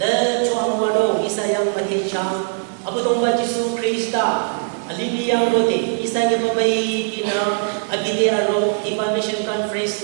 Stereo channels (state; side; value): silent; left; digital silence